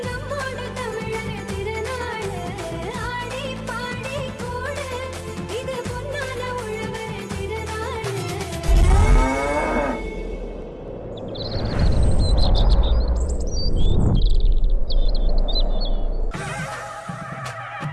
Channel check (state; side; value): identical; both; correlation 1.00